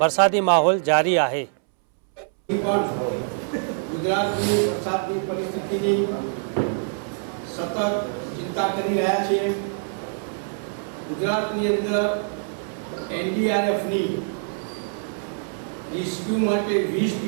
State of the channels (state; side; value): silent; left; 62 dB below the other